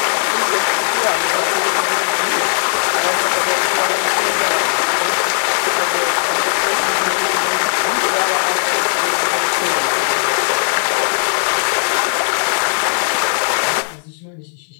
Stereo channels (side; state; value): right; silent; 57 dB below the other